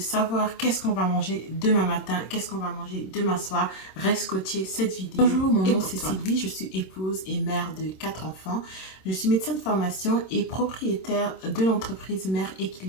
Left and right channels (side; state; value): right; late; 26 ms